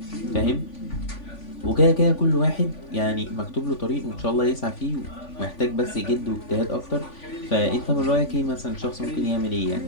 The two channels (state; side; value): late; right; 3.5 ms